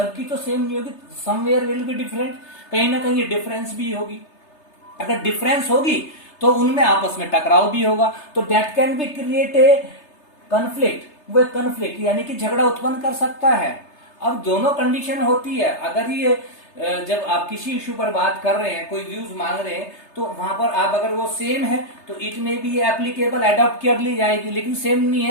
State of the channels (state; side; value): late; right; 3.3 ms